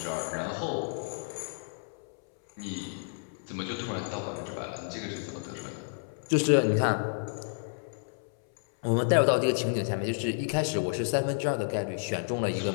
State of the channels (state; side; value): silent; right; 57 dB below the other